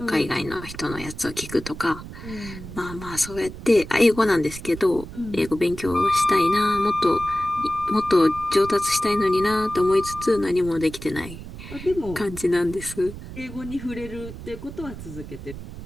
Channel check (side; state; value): right; noise; rumble, 12 dB below the sound